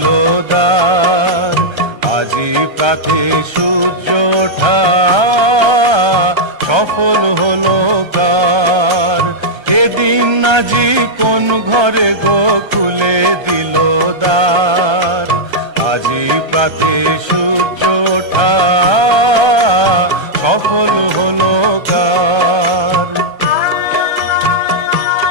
দ্বার, আজি প্রাতে সূর্য ওঠা সফল হলো কার। এদিন আজি কোন ঘরে গো খুলে দিল দ্বার, আজি প্রাতে সূর্য ওঠা সফল হলো কার।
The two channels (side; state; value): left; late; 1.3 ms